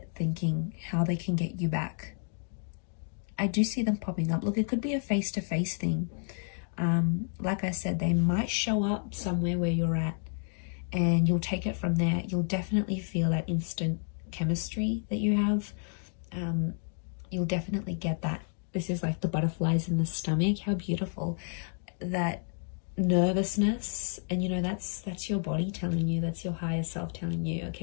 thinking how they can get you back. I do see them popping up. Look, it could be a face-to-face thing. Like I said, they might show up somewhere where you're at, and you'll take it from there. You'll definitely feel that instant chemistry that you have. you'll definitely get that. This is like the butterflies in the stomach. How beautiful. That nervousness, and you know, that's your body telling you, that's your higher self telling you,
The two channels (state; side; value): silent; right; 57 dB below the other